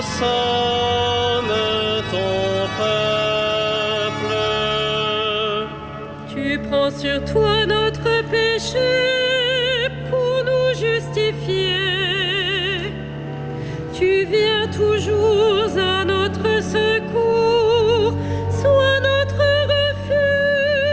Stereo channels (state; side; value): identical; both; correlation 1.00